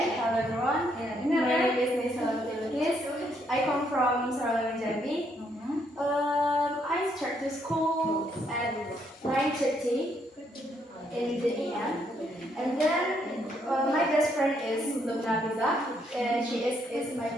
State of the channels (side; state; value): both; normal; correlation 0.72